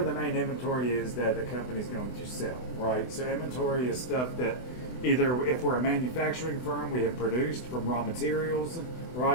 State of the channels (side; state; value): right; late; 24 ms